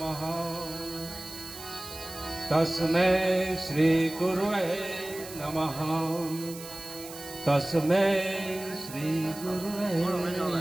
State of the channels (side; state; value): right; noise; hiss, 13 dB below the sound